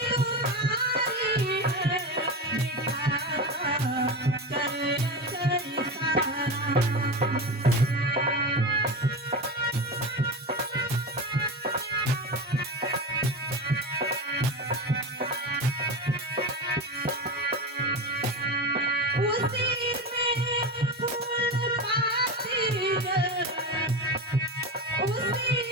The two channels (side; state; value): both; normal; correlation 0.23